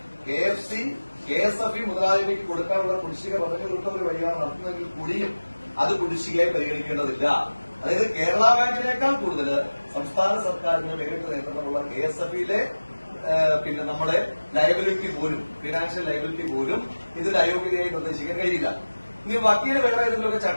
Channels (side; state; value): both; inverted; correlation -1.00